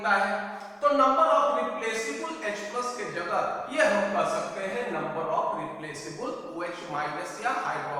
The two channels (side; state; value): both; identical; correlation 1.00